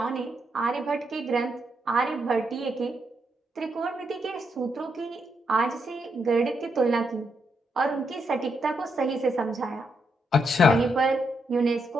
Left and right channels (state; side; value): normal; both; correlation 0.80